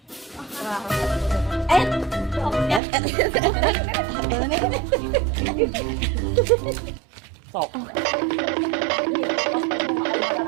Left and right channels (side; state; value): left; drops out; at 2.8 s